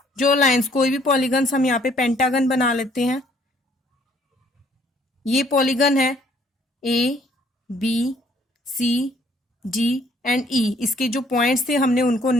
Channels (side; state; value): both; normal; correlation 0.63